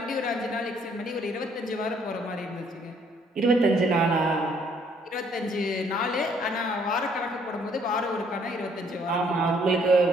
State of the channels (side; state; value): both; normal; correlation 0.64